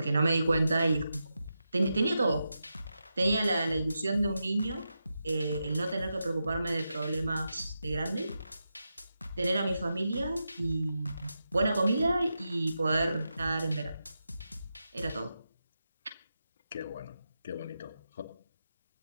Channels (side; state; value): both; inverted; correlation -0.88